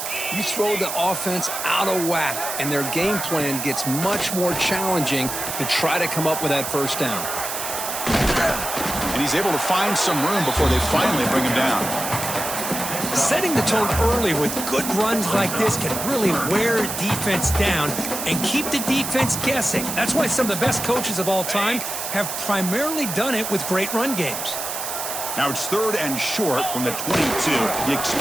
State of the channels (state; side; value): noise; right; hiss, 5 dB below the sound